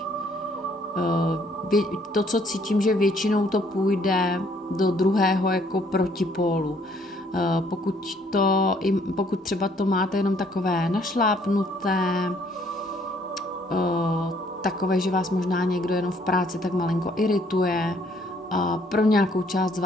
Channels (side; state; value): both; normal; correlation 0.64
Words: To, co cítím, že většinou to půjde do druhého jako protipólu. Pokud třeba to máte jenom takové našlápnuté, takové, že vás možná někdo jenom v práci tak malinko irituje, pro nějakou část z